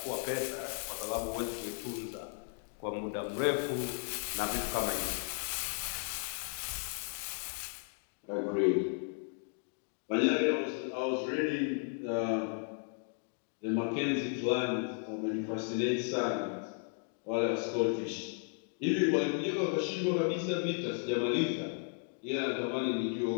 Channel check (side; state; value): right; silent; 55 dB below the other